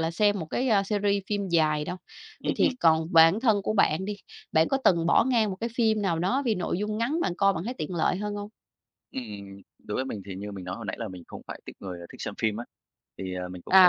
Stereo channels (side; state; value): both; identical; correlation 1.00